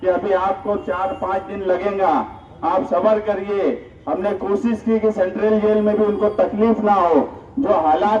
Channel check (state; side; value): identical; both; correlation 1.00